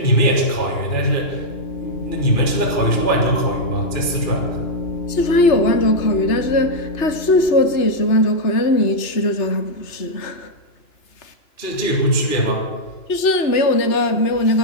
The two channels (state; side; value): late; right; 2.9 ms